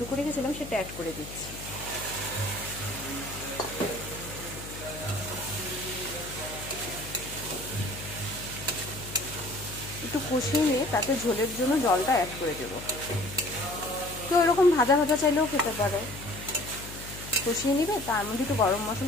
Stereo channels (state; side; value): noise; left; hum, 12 dB below the sound